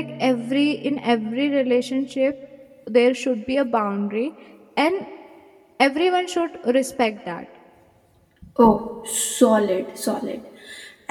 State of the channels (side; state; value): both; identical; correlation 1.00